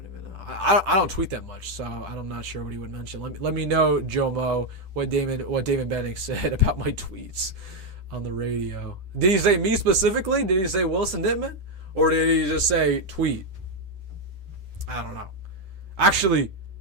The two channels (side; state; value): left; late; 10 ms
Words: even know. I don't tweet that much, so I'm not sure what he would mention. Let me know, Joe Mo, what Damon Benning said about my tweets on the radio. Did he say me specifically? Did he say Wilson Dittman? Or did he just say tweet? I don't know. Actually,